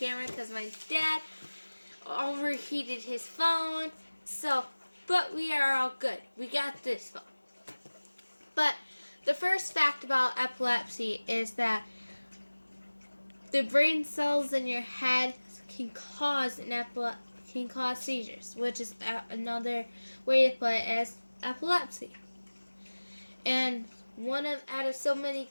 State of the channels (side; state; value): both; inverted; correlation -1.00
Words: because my dad overheated his phone. But we are all good. We got this phone. But the first fact about epilepsy is that the brain cells in your head can cause seizures, which is another way to put it as epilepsy. And out of so many